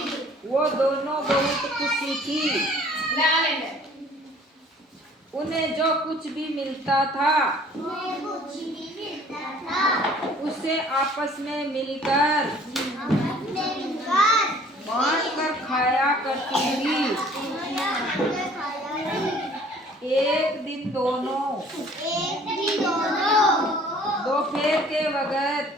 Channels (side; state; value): both; normal; correlation 0.54